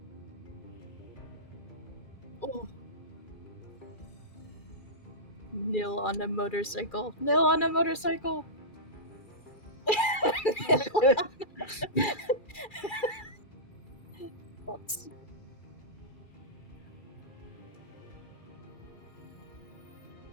Oh. Nil on a motorcycle. Nil on a motorcycle. Thoughts?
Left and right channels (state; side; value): late; right; 2.4 ms